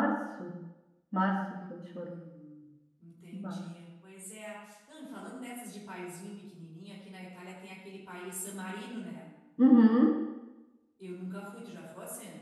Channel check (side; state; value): both; identical; correlation 1.00